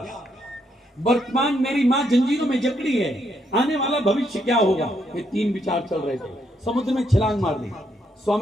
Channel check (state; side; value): normal; both; correlation 0.76